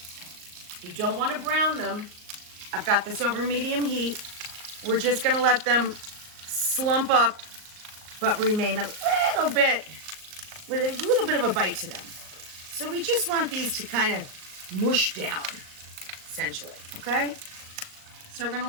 You don't want to brown them. I've got this over medium heat. We're just gonna let them slump up, but remain a little bit, with a little bit of a bite to them. So we just want these to kind of mush down, essentially, okay? So we're gonna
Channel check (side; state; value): left; late; 38 ms